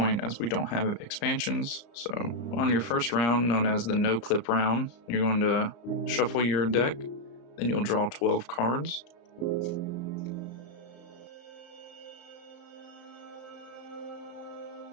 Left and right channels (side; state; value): right; late; 35 ms